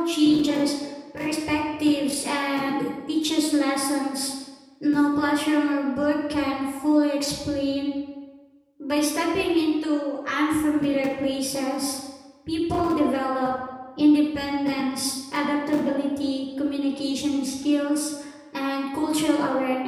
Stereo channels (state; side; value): identical; both; correlation 1.00